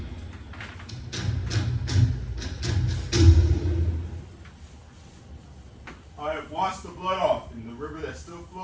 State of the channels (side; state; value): both; identical; correlation 1.00